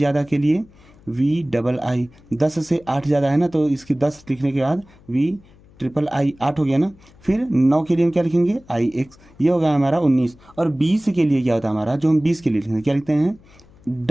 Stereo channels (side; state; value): left; noise; hum, 26 dB below the sound